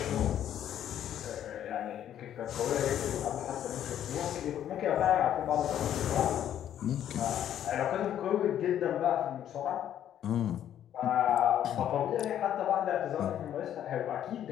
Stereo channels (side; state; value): right; quieter; 10.6 dB